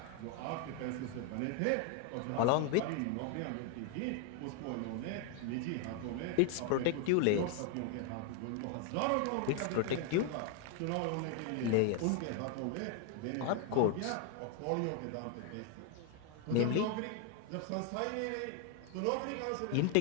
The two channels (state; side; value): different; both; correlation 0.00